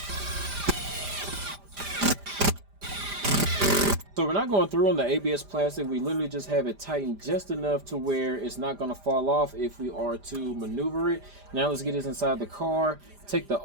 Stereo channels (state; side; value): late; left; 5.0 ms